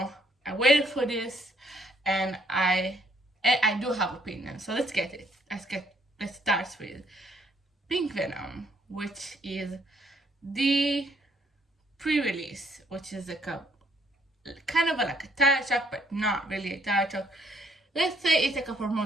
I waited for this and I do have opinion. So let's get it. Let's start with Pink Venom, which is the pre-release, which is like a kind of like a title track, but not really a title track. Let's say it's like a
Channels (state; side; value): normal; both; correlation 0.68